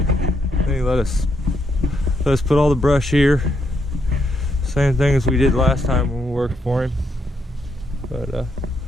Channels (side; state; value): both; normal; correlation 0.77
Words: he let us put all the brush here, same thing as we did last time when we worked for him. But